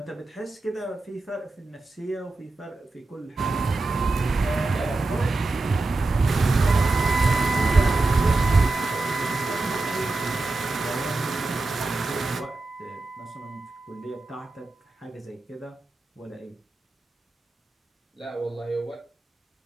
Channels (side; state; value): left; quieter; 3.2 dB